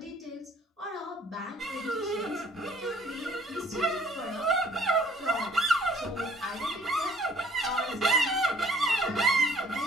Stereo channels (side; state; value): both; normal; correlation 0.58